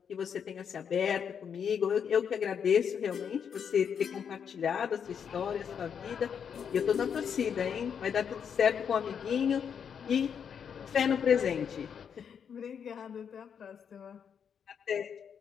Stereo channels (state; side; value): quieter; right; 7.5 dB